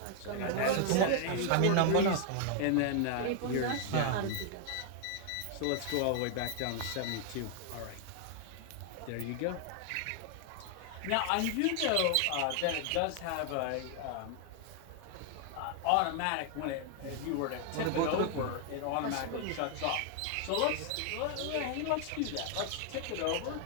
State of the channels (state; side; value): different; both; correlation 0.00